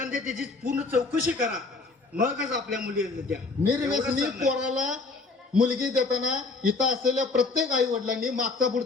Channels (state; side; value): quieter; right; 3.9 dB